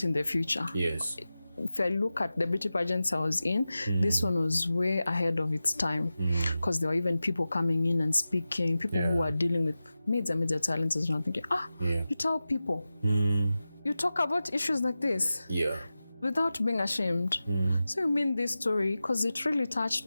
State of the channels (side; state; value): both; inverted; correlation -0.94